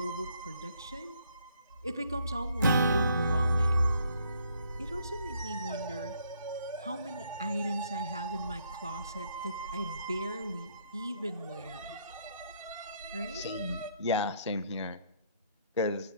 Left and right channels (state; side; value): inverted; both; correlation -0.68